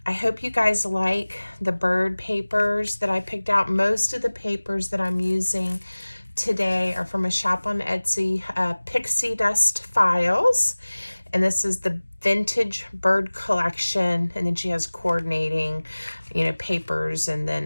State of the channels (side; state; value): both; inverted; correlation -1.00